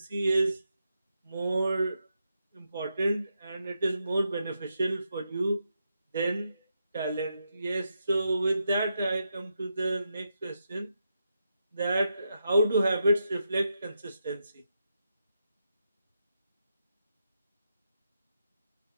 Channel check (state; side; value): inverted; both; correlation -0.84